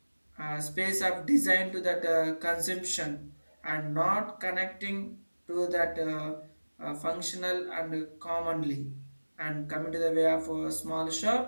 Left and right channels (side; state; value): both; inverted; correlation -1.00